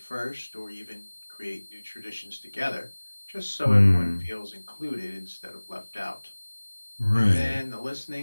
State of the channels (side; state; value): both; inverted; correlation -1.00